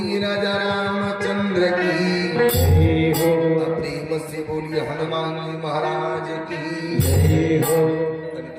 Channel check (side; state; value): both; identical; correlation 1.00